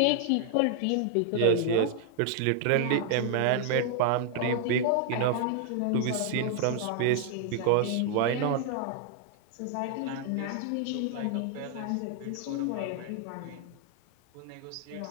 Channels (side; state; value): both; different; correlation 0.00